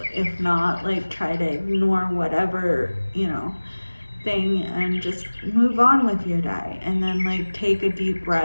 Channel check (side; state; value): both; inverted; correlation -1.00